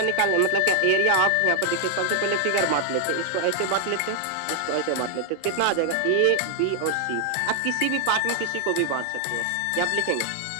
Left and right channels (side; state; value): both; different; correlation 0.00